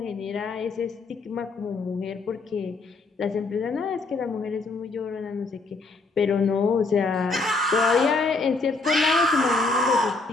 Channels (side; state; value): right; quieter; 3.6 dB